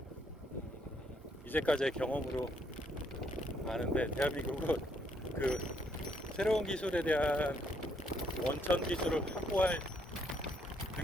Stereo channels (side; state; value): both; normal; correlation 0.71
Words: 이제까지의 경험으로 아는데 대한민국은 그 새로운 기술에 대한 원천 기술을 확보할